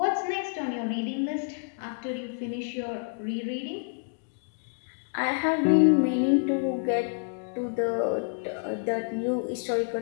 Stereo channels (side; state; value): right; silent; digital silence